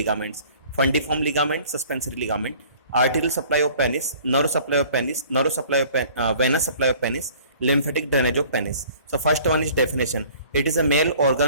fundiform ligament, suspensory ligament, arterial supply of penis, nerve supply of penis, nerve supply of venous supply of penis, lymphatic drainage of penis. So first one is definition. It is a male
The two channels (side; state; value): both; inverted; correlation -0.52